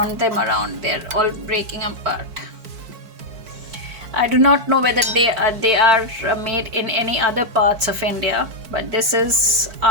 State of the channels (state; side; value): late; left; 4.5 ms